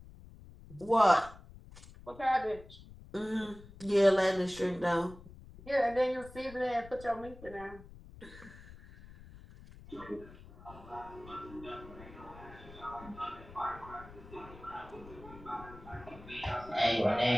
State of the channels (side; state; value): left; noise; rumble, 18 dB below the sound